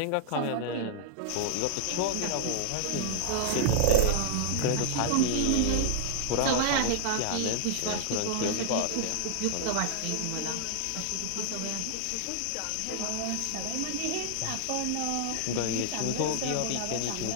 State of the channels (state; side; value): different; both; correlation -0.01